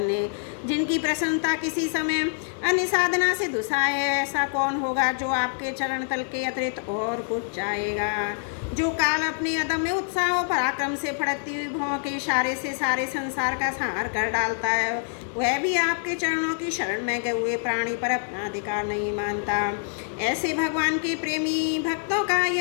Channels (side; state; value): right; silent; digital silence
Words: जिनकी प्रसन्नता किसी समय अन्य साधना से दुसाए, ऐसा कौन होगा जो आपके चरण तल के अतिरिक्त और कुछ चाहेगा। जो काल अपने अदम्य उत्साह और पराक्रम से फड़कती हुई भौं के इशारे से सारे संसार का संहार कर डालता है, वह भी आपके चरणों की शरण में गए हुए प्राणी पर अपना अधिकार नहीं मानता। ऐसे भगवान के प्रेमी भक्तों का